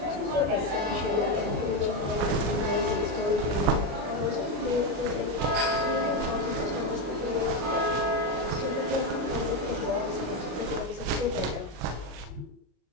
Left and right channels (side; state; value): left; late; 33 ms